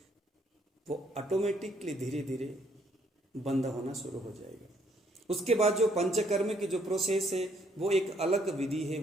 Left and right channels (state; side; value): normal; both; correlation 0.68